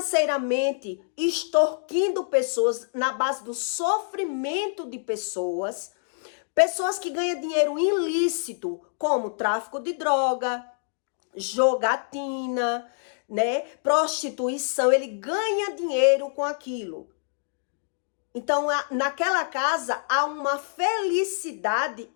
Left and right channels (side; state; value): right; silent; digital silence